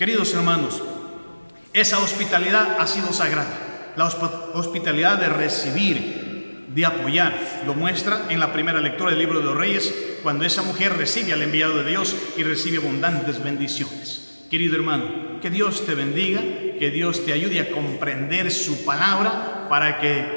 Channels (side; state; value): both; inverted; correlation -1.00